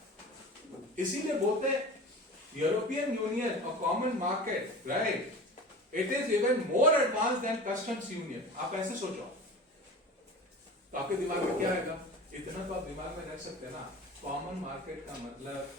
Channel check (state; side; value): normal; both; correlation 0.36